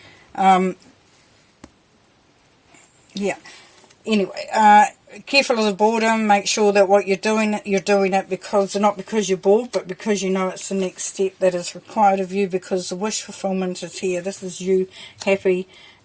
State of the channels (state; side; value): identical; both; correlation 1.00